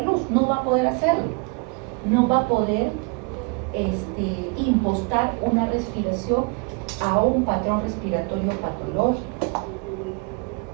luz, no va a poder hacerlo. No va a poder impostar una respiración a un patrón respiratorio patológico.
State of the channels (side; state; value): left; quieter; 32.7 dB